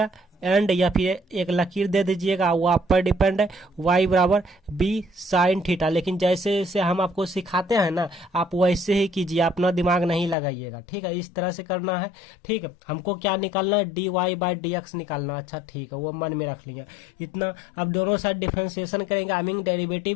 एंड या फिर एक लकीर दे दीजिएगा, वो आप पर डिपेंड है। y बराबर b साइन थीटा। लेकिन जैसे जैसे हम आपको सिखाते हैं ना, आप वैसे ही कीजिए, अपना दिमाग नहीं लगाइएगा, ठीक है। इस तरह से करना है, ठीक है। हमको क्या निकालना है, dy बाई dx निकालना। अच्छा ठीक है, वो मन में रख लिया इतना। अब दोनों साइड डिफरेंशिएशन करेंगे, आई मीन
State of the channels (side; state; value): right; drops out; at 10.4 s